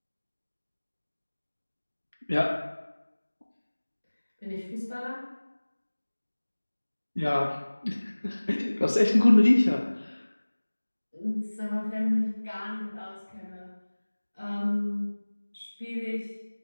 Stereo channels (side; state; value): both; inverted; correlation -1.00